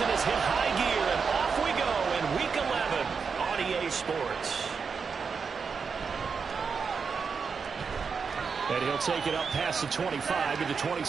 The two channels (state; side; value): quieter; left; 5.6 dB